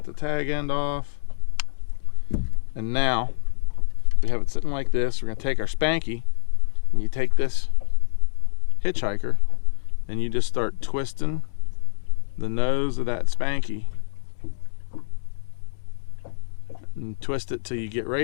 the tag end off. And now we have it sitting like this. We're gonna take our Spanky, and you take this hitchhiker and you just start twisting the nose of that Spanky, and twist it till you get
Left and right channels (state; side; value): silent; right; digital silence